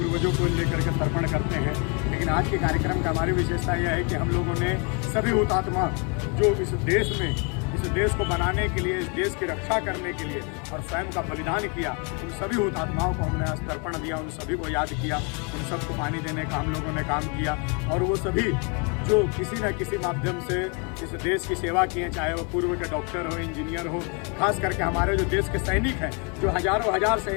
को लेकर के तर्पण करते हैं, लेकिन आज के कार्यक्रम का हमारी विशेषता यह है कि हम लोगों ने सभी हुतात्मा जो इस देश को बनाने के लिए, इस देश की रक्षा करने के लिए और स्वयं का बलिदान किया, उन सभी हुतात्माओं को हमने आज तर्पण दिया, उन सभी को याद किया, उन सबको पानी देने का हम लोगों ने काम किया। और वो सभी जो किसी न किसी माध्यम से इस देश की सेवा किए, चाहे वो पूर्व के डॉक्टर हो, इंजीनियर हो, खास करके हमारे जो देश के सैनिक हैं, जो हजारों हजार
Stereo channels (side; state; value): right; quieter; 34.7 dB